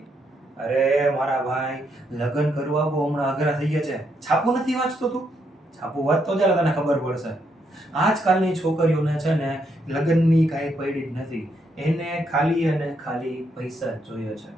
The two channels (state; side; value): normal; both; correlation 0.77